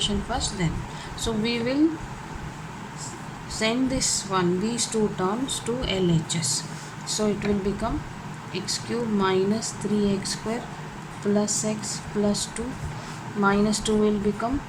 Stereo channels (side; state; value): both; identical; correlation 1.00